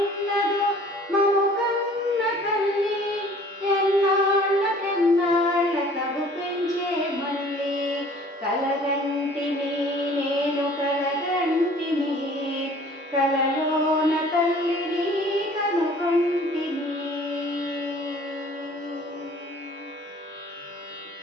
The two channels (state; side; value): normal; both; correlation 0.51